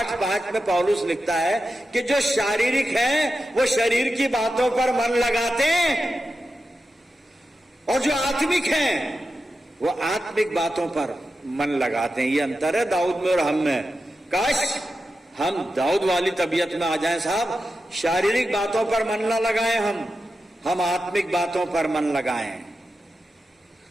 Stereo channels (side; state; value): both; normal; correlation 0.91